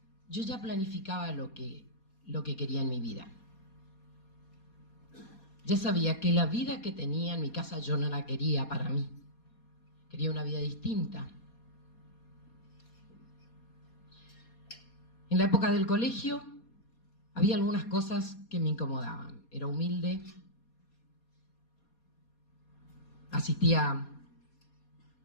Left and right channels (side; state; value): right; late; 4.2 ms